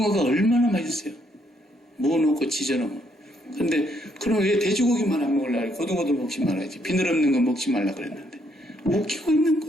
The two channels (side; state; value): both; normal; correlation 0.72